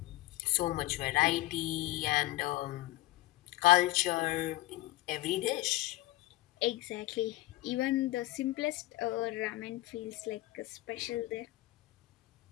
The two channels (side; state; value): right; quieter; 17.6 dB